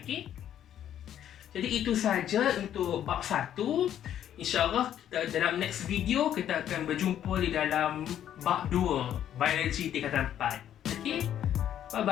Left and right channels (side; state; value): right; quieter; 10.6 dB